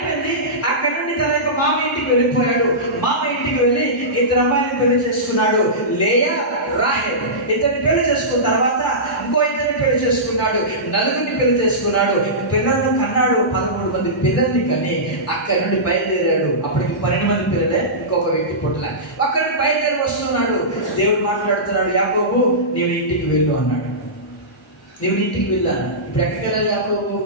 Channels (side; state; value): both; normal; correlation -0.17